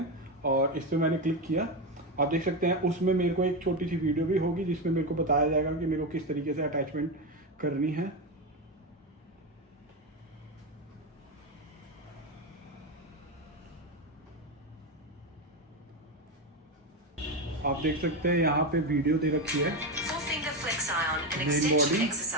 और इस पर मैंने क्लिक किया, आप देख सकते हैं। उसमें मेरे को एक छोटी सी वीडियो भी होगी जिसमें मेरे को बताया जाएगा कि मेरे को किस तरीके से अटैचमेंट करनी है। आप देख सकते हैं यहाँ पे वीडियो दे रखी है। Main body,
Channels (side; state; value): both; normal; correlation 0.13